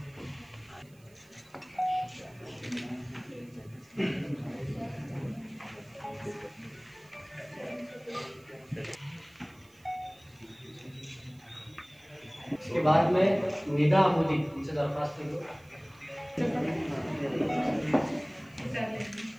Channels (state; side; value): noise; right; hiss, 29 dB below the sound